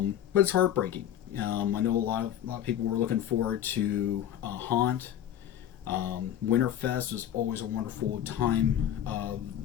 it's heartbreaking. I know a lot of people were looking forward to Haunt. Winterfest is always a wonderful time of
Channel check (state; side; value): quieter; right; 10.8 dB